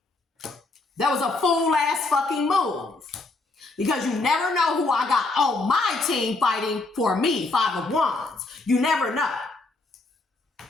That was a fool ass fucking move. Because you never know who I got on my team fighting for me, Five of Wands. You never know.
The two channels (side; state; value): right; quieter; 3.3 dB